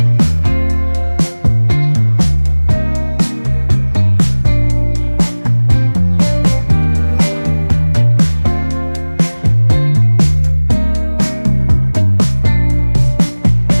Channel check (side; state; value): both; inverted; correlation -1.00